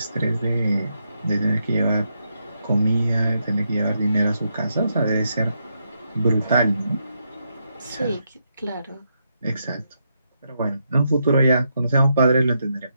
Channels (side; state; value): both; inverted; correlation -0.81